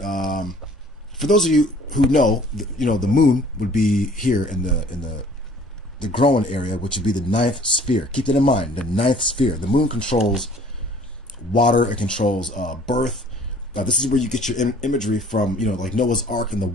For those of you who know, the moon would be here in the growing area, which would be the ninth sphere. Keep that in mind, the ninth sphere. The moon controls water, it controls birth. This is where you get your imagery from, like Noah's Ark and the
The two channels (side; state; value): both; normal; correlation 0.54